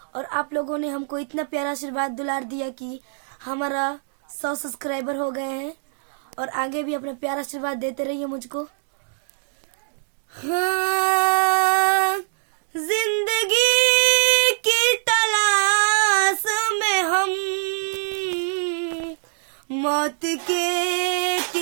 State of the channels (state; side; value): silent; left; digital silence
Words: और आप लोगों ने हमको इतना प्यारा आशीर्वाद दुलार दिया कि हमारा 100 सब्सक्राइबर हो गए हैं और आगे भी अपना प्यारा आशीर्वाद देते रहिए मुझको। हाँ, जिंदगी की तलाश में हम मौत के